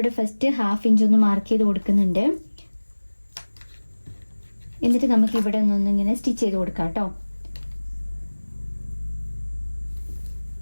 ഫസ്റ്റ് 1/2 ഇഞ്ച് ഒന്ന് മാർക്ക് ചെയ്ത് കൊടുക്കുന്നുണ്ട്. എന്നിട്ട് നമുക്ക് ഇവിടെ ഒന്നിങ്ങനെ സ്റ്റിച്ച് ചെയ്ത് കൊടുക്കാം കേട്ടോ.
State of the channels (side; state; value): both; inverted; correlation -1.00